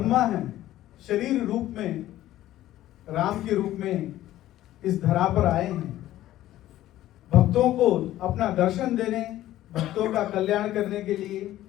हैं, शरीर रूप में राम के रूप में इस धरा पर आए हैं, भक्तों को अपना दर्शन देने, भक्तों का कल्याण करने के लिए,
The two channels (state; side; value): quieter; right; 14.1 dB